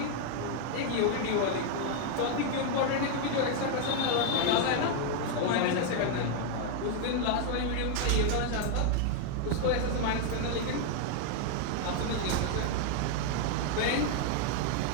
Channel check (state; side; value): different; both; correlation 0.00